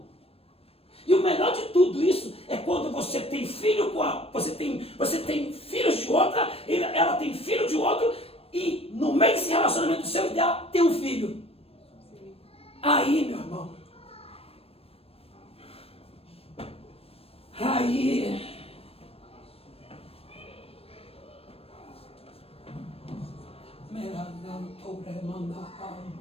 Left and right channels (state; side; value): late; right; 0.28 ms